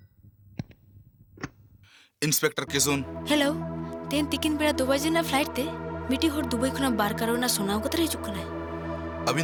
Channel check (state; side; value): identical; both; correlation 1.00